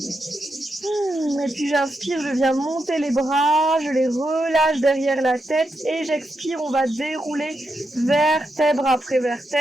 Et puis j'inspire, je viens monter les bras, je les relâche derrière la tête et j'expire, on va dérouler vertèbre après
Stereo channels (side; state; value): both; normal; correlation 0.85